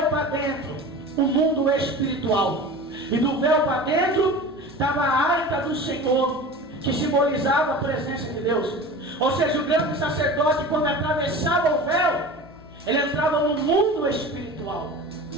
para dentro, o mundo espiritual. E do véu para dentro estava a arca do Senhor, que simbolizava a presença de Deus. Ou seja, o grande sacerdote, quando atravessava o véu, ele entrava no mundo espiritual.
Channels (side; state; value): left; noise; hum, 24 dB below the sound